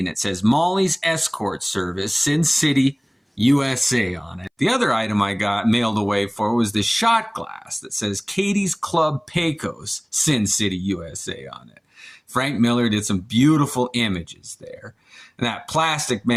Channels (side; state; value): both; identical; correlation 1.00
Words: it says Molly's Escort Service, Sin City, USA on it. The other item I got mailed away for was this shot glass that says Katie's Club Pecos, Sin City, USA on it. Frank Miller did some beautiful images there. And that Plastic